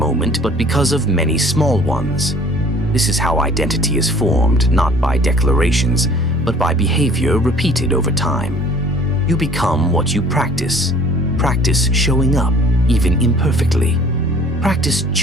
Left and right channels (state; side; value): normal; both; correlation 0.52